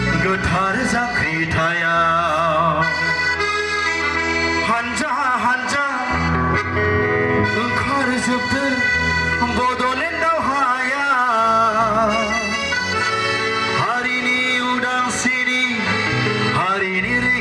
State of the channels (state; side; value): identical; both; correlation 1.00